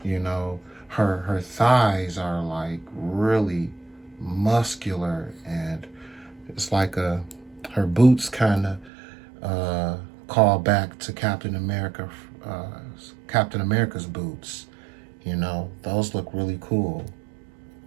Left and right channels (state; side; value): drops out; left; at 8.9 s